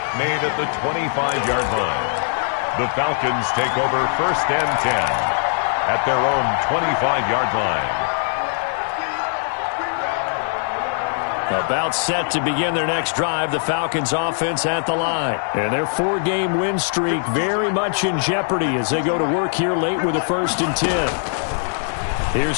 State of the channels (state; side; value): silent; right; digital silence